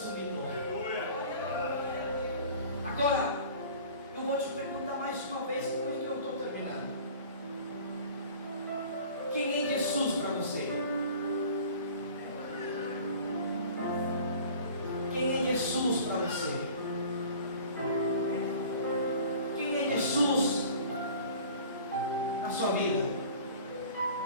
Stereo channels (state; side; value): inverted; both; correlation -0.44